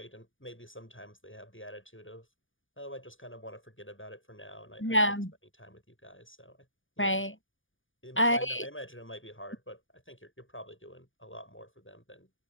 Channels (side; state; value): right; late; 0.57 ms